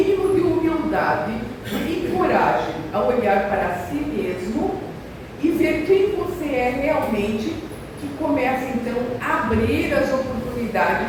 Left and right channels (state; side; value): identical; both; correlation 1.00